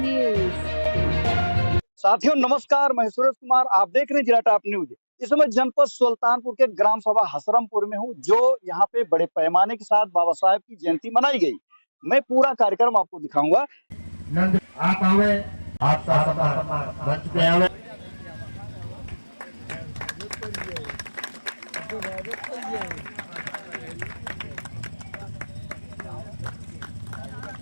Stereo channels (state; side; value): inverted; both; correlation -1.00